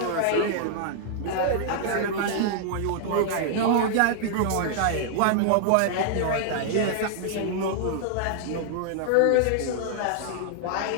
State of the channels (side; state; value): both; different; correlation -0.01